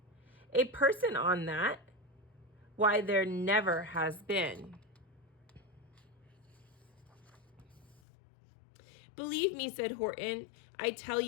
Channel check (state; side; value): drops out; right; at 8.0 s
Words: A person on that? Why, there never has been." "Believe me," said Horton, "I tell